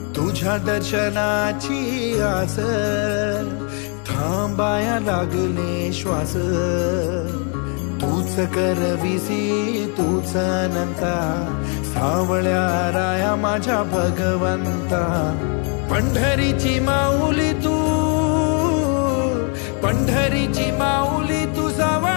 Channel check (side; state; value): right; quieter; 39.6 dB